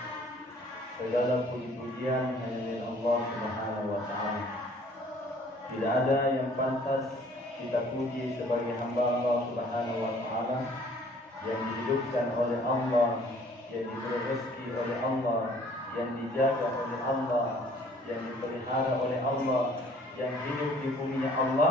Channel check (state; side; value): normal; both; correlation 0.56